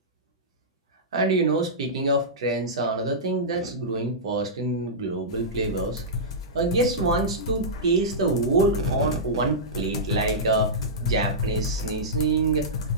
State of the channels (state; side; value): normal; both; correlation -0.14